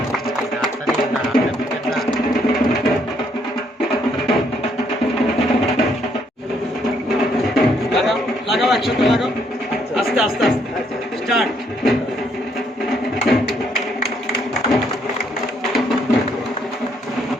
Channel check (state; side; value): normal; both; correlation 0.70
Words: লাগাও একসাথে লাগাও আস্তে আস্তে আস্তে স্টার্ট